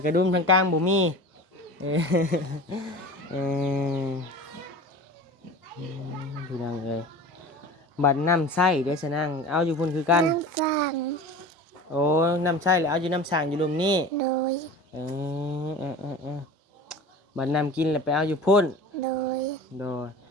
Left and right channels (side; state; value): both; normal; correlation 0.36